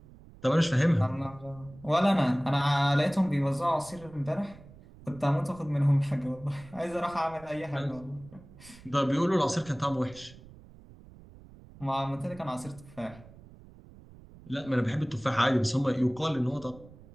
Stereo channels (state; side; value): noise; right; rumble, 21 dB below the sound